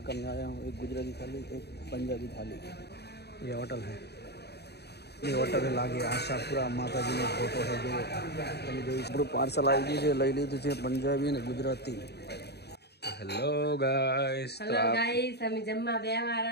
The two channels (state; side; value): late; right; 0.48 ms